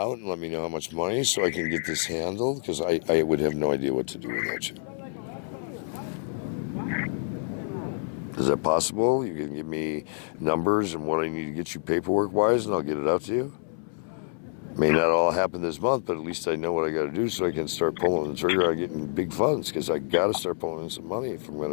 and let me know how much money so I can get this handled? Because I would have no idea what to do without you. Is that possible? You can give me numbers and what I need to get you paperwork-wise, and I'll get it out to you? May not all happen this month, but at least I know what I got to do so I can start pulling the trigger on getting big funds, because I got to start pulling in some money if I'm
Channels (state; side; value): silent; right; 60 dB below the other